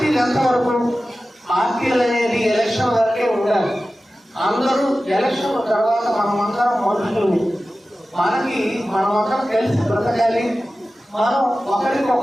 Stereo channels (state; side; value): normal; both; correlation 0.95